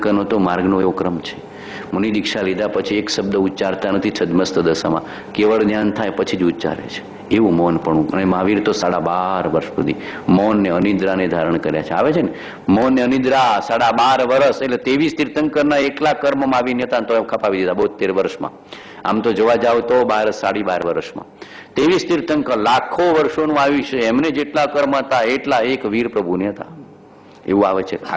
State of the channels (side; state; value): both; identical; correlation 1.00